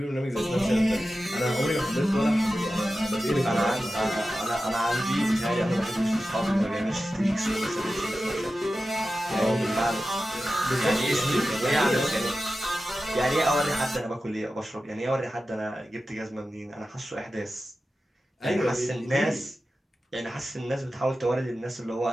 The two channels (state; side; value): normal; both; correlation 0.93